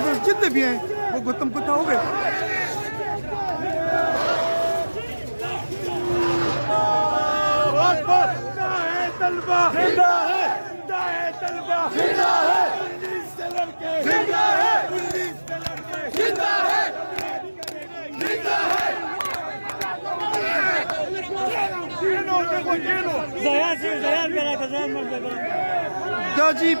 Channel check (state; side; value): inverted; both; correlation -1.00